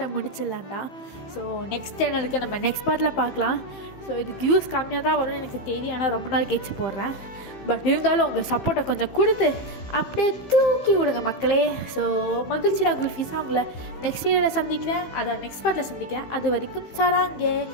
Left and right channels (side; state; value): right; late; 15 ms